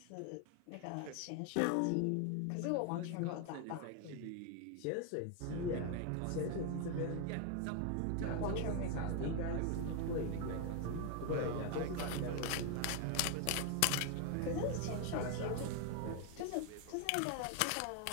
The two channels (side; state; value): both; different; correlation 0.01